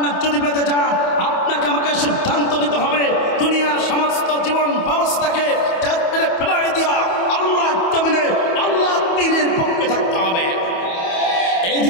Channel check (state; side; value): late; right; 28 ms